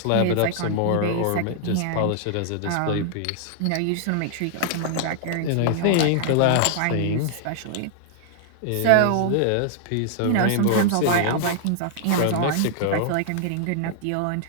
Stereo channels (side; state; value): both; different; correlation -0.01